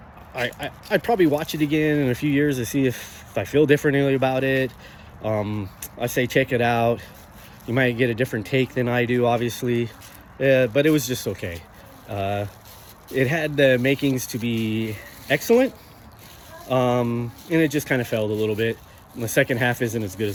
probably watch it again in a few years to see if I feel differently about it. I say check it out. You might get a different take than I do, obviously, but it was just okay. It had the makings to be excellent, and it just kind of failed a little bit. And the second half isn't as good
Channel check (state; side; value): identical; both; correlation 1.00